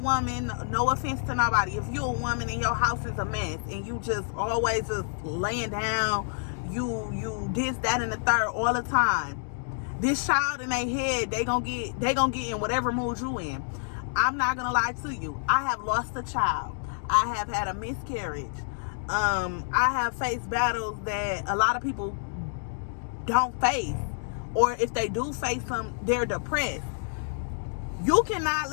no offense to nobody, if you a woman and your house is a mess and you just always just laying down, you this, that, and the third all the time, this child in their head, they gonna get in whatever mood you in. I'm not gonna lie to you. I have lost a child. I have had a miscarriage. I have faced battles that a lot of people don't face, or if they do face them, they're depressed. You cannot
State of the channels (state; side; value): silent; right; digital silence